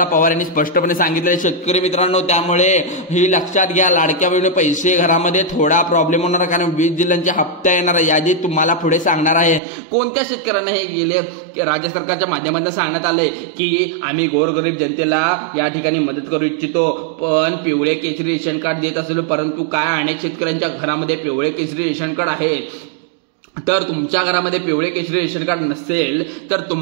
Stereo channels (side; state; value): left; drops out; at 9.6 s